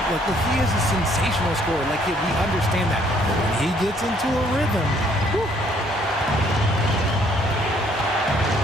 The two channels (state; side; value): normal; both; correlation 0.64